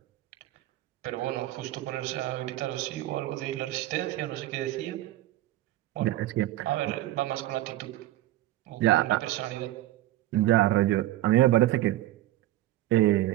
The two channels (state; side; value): quieter; left; 15.4 dB